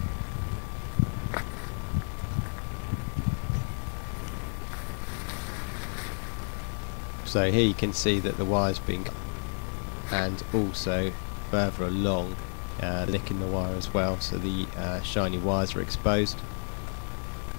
So here you can see that the wire's been cut, and also further along licking the wire as well, so the shiny wires are exposed.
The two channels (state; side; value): silent; right; digital silence